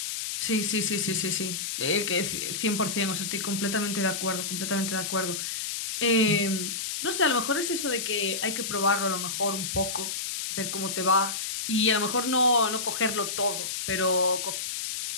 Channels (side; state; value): left; noise; hiss, 3 dB below the sound